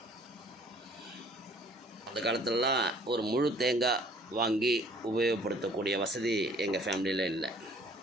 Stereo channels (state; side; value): normal; both; correlation 0.56